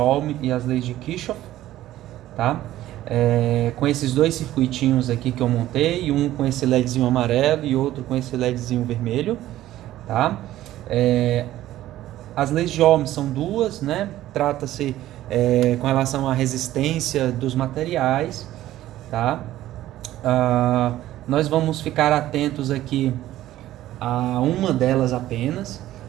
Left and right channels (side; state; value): left; quieter; 14.3 dB